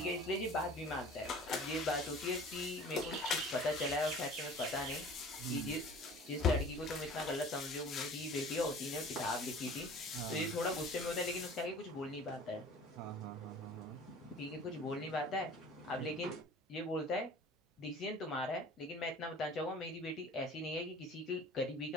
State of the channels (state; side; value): normal; both; correlation 0.45